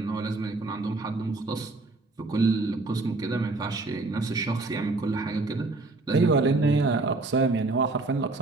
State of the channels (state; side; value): quieter; left; 3.2 dB